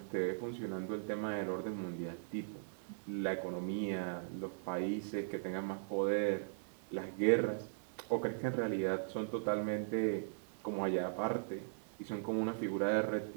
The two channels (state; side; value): silent; left; 52 dB below the other